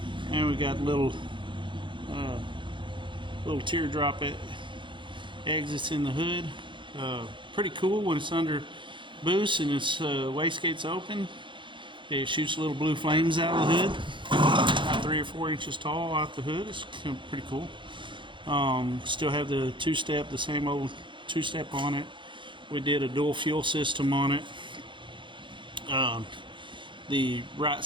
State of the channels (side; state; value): left; late; 0.23 ms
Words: and we got little teardrop exits in the hood. Pretty cool when it's under boost and its wastegate's open. It shoots little blue flames out of the hood, about 3 or 4 inches tall out the hood. It's pretty cool. Still have the two-step, the same old two-step on it. We did a dual fuel system on it. The right